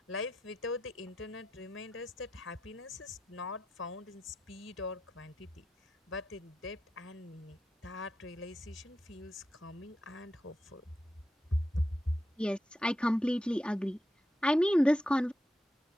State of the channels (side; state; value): both; normal; correlation 0.87